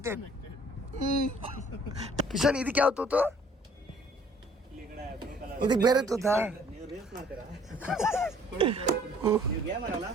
ಕಿಶನ್, ಇದಕ್ಕೆ ಯಾವ ತೂತು? ಇದಕ್ಕೆ ಬೇರೆ ತೂತಾ?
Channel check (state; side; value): normal; both; correlation 0.57